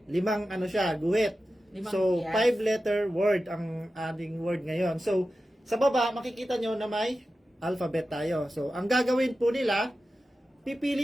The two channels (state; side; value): normal; both; correlation 0.93